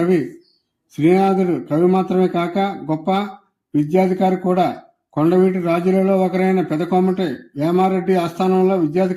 శ్రీనాథుడు కవి మాత్రమే కాక గొప్ప విద్యాధికారి కూడా. కొండవీటి రాజులలో ఒకరైన పెదకోమటి వేమారెడ్డి ఆస్థానంలో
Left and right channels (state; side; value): identical; both; correlation 1.00